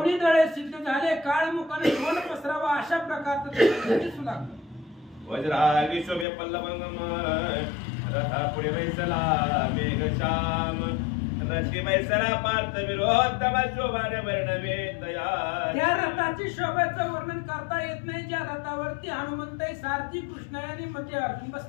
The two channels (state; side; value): drops out; right; at 6.2 s